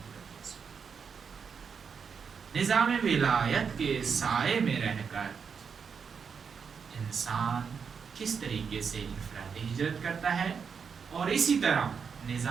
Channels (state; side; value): quieter; left; 6.3 dB